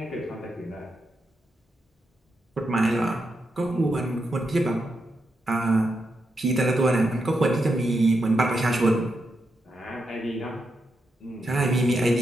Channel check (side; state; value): both; normal; correlation 0.84